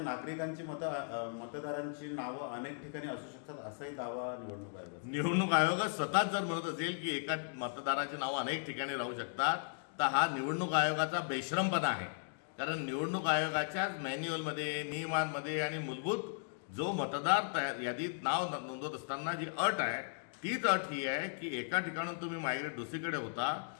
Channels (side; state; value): right; silent; digital silence